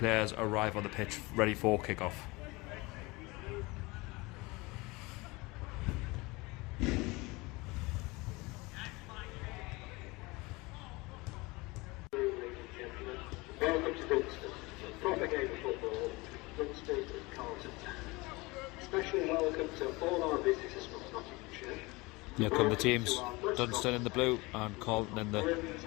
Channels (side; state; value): right; quieter; 23.8 dB